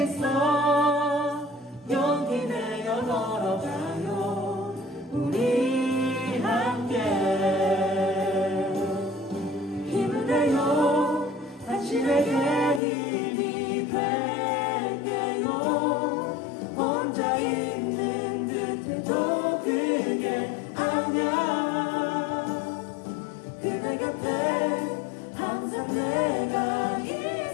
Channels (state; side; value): drops out; right; at 12.8 s